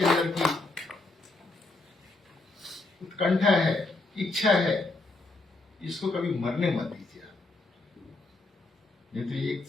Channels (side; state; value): right; quieter; 3.2 dB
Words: अंदर की उत्कंठा है, इच्छा है, इसको कभी मरने मत दीजिए। नहीं तो एक